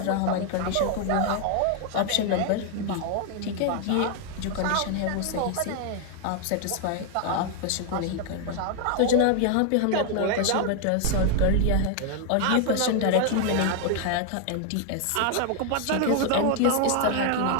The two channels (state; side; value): different; both; correlation 0.00